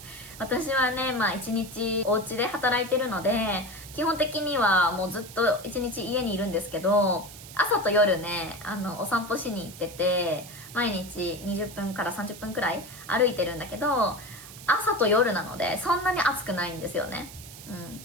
私はね、一日お家で働いてるので、基本的にはもうずっと一日家にいるんですけど、朝と夜ね、お散歩しに行ってて、毎日20分から30分くらい歩いてるんだけど、朝と夜なので、そんなに暑くないんですよね。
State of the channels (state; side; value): noise; right; hiss, 15 dB below the sound